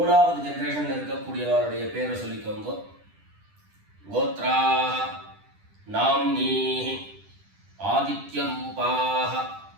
ஜெனரேஷன்ல இருக்கக்கூடியவருடைய பேரை சொல்லிக்கோங்க. கோத்ராः நாம்னீः ஆதித்யரூபாः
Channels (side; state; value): left; late; 10 ms